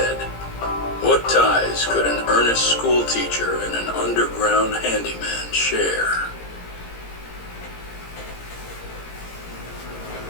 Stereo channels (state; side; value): late; right; 17 ms